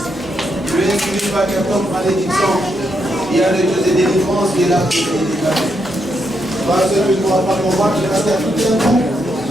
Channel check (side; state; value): both; normal; correlation 0.80